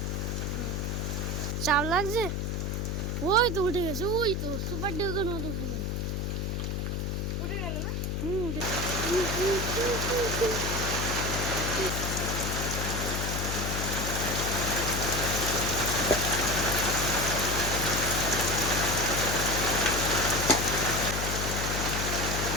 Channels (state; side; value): noise; left; hum, 1 dB below the sound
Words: চাপ লাগছে? ওই তো উঠে গেছে, ওই তো সুপার ডিউকের মতো উঠে গেল। উঠে গেল না? উঠে